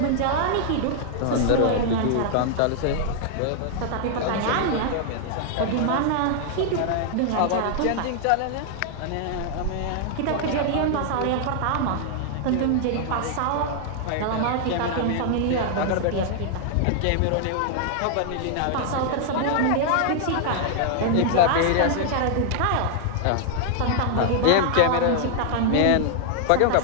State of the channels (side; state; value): both; different; correlation -0.01